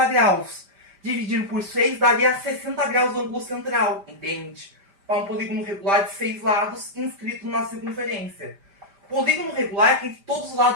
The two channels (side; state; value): left; late; 5.1 ms